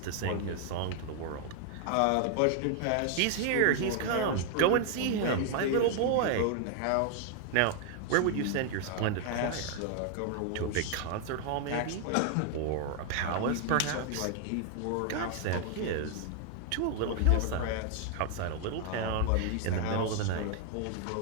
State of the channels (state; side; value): different; both; correlation 0.00